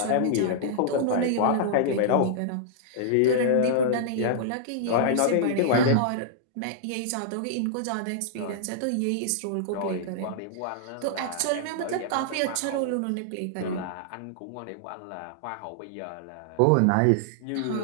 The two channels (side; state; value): both; different; correlation -0.01